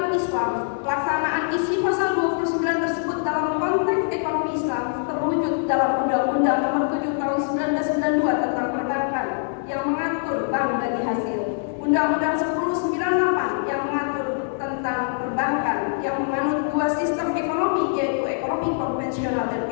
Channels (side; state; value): right; silent; digital silence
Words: Islam, pelaksanaan isi pasal 29 tersebut dalam konteks ekonomi Islam terwujud dalam Undang-Undang Nomor 7 Tahun 1992 tentang perbankan yang mengatur bank bagi hasil, Undang-Undang 1098 yang mengatur tentang perbankan yang menganut dua sistem ekonomi, yaitu ekonomi konvensional dan